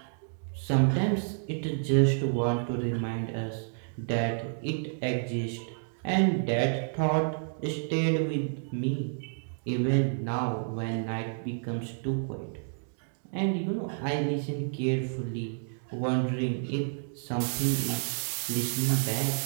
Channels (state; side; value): silent; left; digital silence